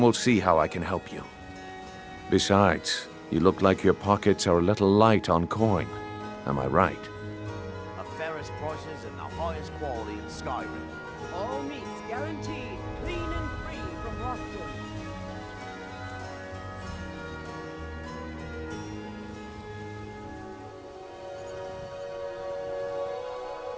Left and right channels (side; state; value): both; identical; correlation 1.00